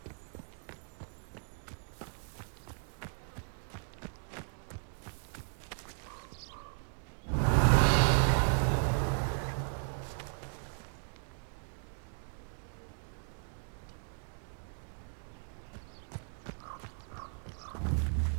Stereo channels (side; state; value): left; silent; 54 dB below the other